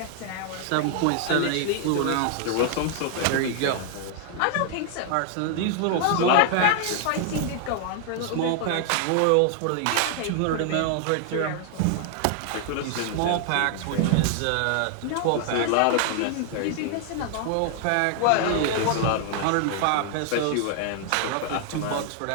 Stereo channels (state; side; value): different; both; correlation 0.00